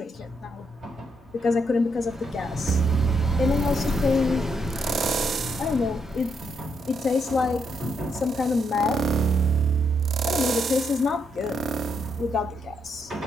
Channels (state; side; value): normal; both; correlation 0.77